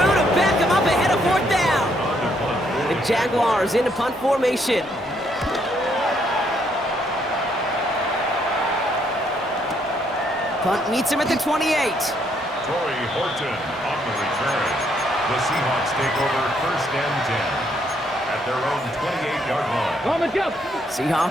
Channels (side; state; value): both; normal; correlation 0.71